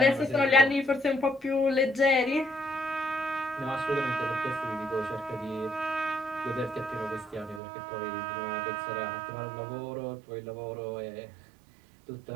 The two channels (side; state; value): left; drops out; at 7.6 s